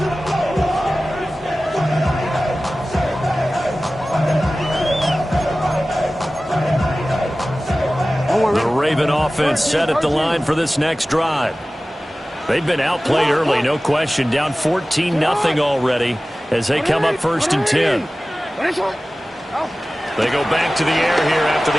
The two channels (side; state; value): both; normal; correlation 0.97